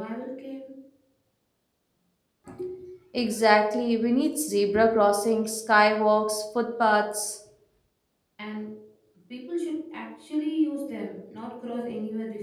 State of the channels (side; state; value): both; identical; correlation 1.00